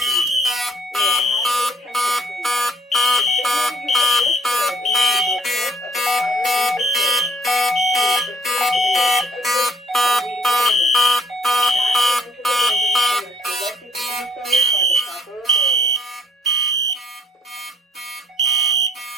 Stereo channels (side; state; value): both; normal; correlation 0.61